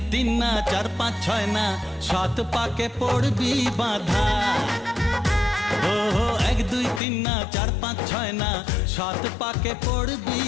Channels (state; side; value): drops out; right; at 7.0 s